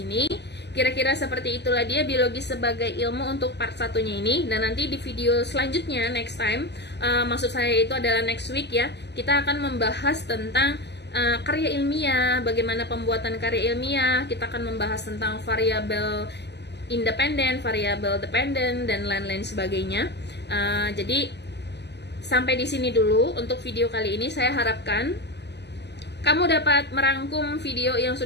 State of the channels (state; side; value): late; right; 0.50 ms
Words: Kira-kira seperti itulah dia biologi sebagai ilmu untuk part satunya ini. Dan nanti di video selanjutnya, next time, maksud saya itu adalah next week ya, kita akan membahas tentang karya ilmiah, bagaimana pembuatan karya ilmiah. Kita akan membahas tentang variabel independen, variabel dependen, dan lain-lain sebagainya. Jadi sampai di sini dulu untuk video kali ini. Saya harapkan kamu dapat merangkum video yang